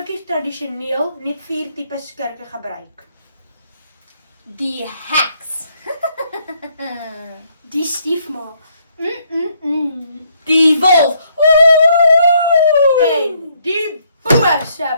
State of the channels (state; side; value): inverted; both; correlation -0.70